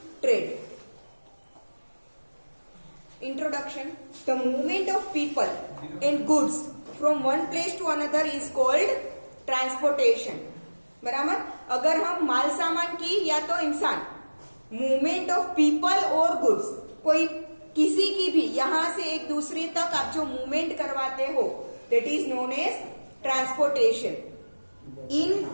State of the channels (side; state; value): both; inverted; correlation -1.00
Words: Trade. Introduction. The movement of people and goods from one place to another is called transportation. बराबर. अगर हम माल सामान की या तो इंसान, मूवमेंट ऑफ पीपल और गुड्स, कोई किसी की भी यहां से एक दूसरे तक आप जो मूवमेंट करवाते हो, that is known as transportation. In